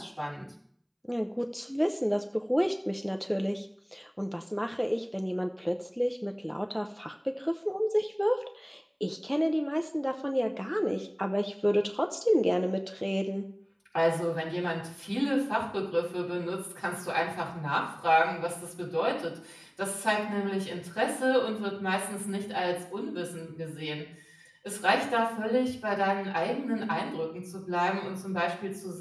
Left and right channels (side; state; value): both; identical; correlation 1.00